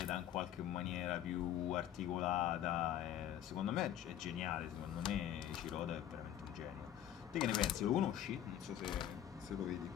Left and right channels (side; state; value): right; quieter; 11.0 dB